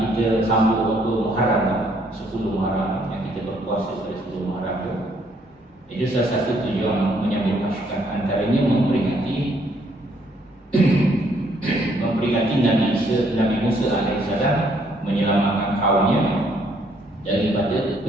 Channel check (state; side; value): normal; both; correlation 0.67